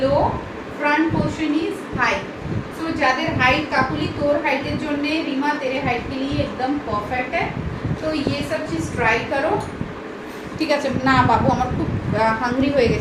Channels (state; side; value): identical; both; correlation 1.00